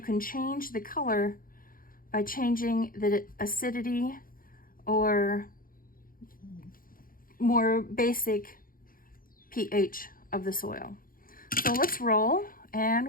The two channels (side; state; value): right; late; 0.41 ms